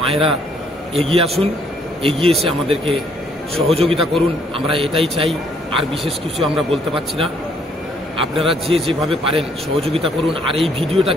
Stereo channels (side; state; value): both; normal; correlation 0.66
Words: মায়েরা এগিয়ে আসুন, এগিয়ে এসে আমাদেরকে সহযোগিতা করুন। আমরা এটাই চাই, আর বিশেষ কিছু আমরা বলতে পারছি না। আপনারা যেভাবে পারেন সহযোগিতা করুন, আর এই